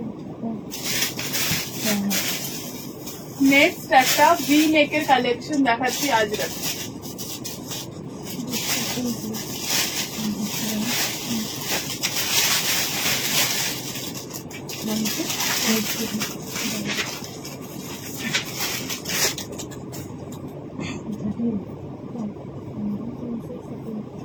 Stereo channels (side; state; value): both; identical; correlation 1.00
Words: নেক্সট একটা ভি নেকের কালেকশন দেখাচ্ছি আজরাক।